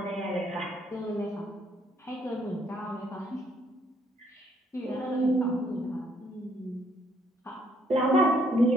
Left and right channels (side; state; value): both; normal; correlation 0.68